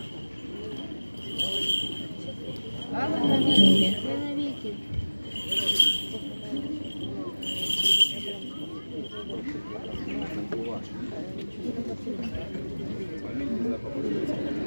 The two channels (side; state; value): both; inverted; correlation -1.00